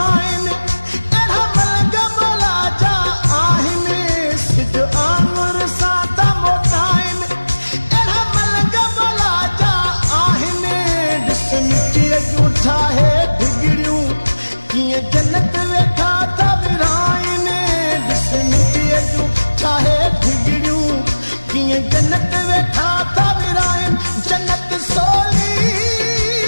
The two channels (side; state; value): both; inverted; correlation -1.00